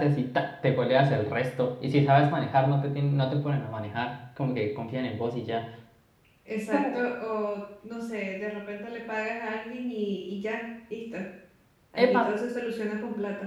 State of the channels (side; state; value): both; identical; correlation 1.00